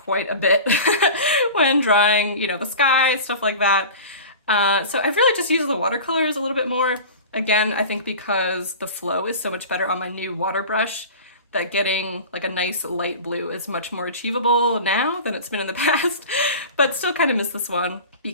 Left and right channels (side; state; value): both; inverted; correlation -0.35